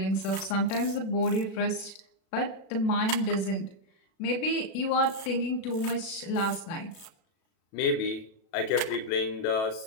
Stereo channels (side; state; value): right; late; 37 ms